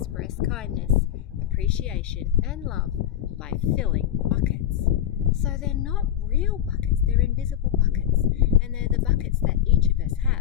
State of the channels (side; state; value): right; quieter; 11.2 dB